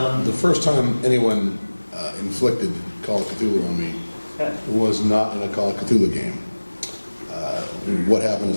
The first time anyone inflicted Call of Cthulhu on me was not in a Call of Cthulhu game. What happened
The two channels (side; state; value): both; inverted; correlation -1.00